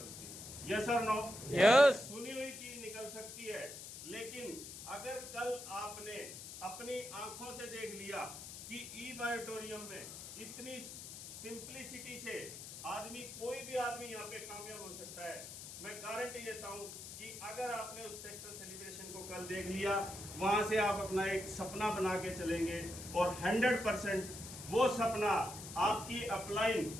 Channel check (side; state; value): left; noise; hiss, 11 dB below the sound